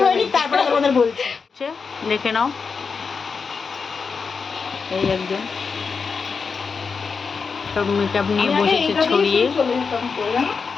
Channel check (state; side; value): quieter; right; 5.3 dB